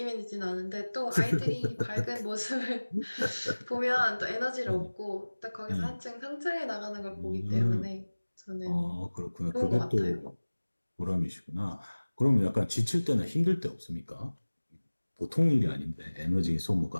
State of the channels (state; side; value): inverted; both; correlation -1.00